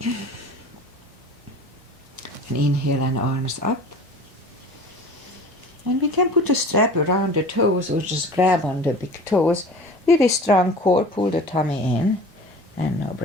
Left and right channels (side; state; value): both; normal; correlation 0.41